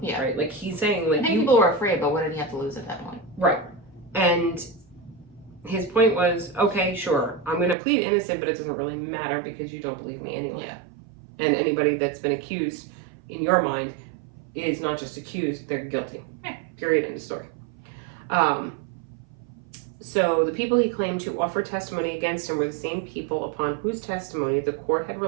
Right? Like, he's saying, like, I think people were afraid, but what did he have to lose at that point? Right. And his point was, okay, sure, I'm going to plead innocent, but it doesn't really matter because you don't believe me anyway. Yeah. And anybody that's been accused, in your mind, is not just accused, they're guilty. Yeah. Period, end of story. So the people he claimed to offer testimony against him were the same people upon whose testimony the court had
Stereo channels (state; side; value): drops out; left; at 7.8 s